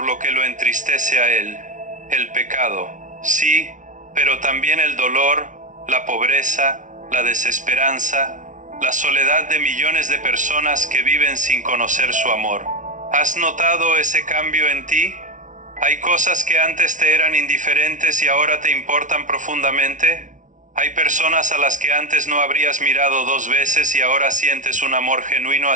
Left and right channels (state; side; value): late; left; 0.37 ms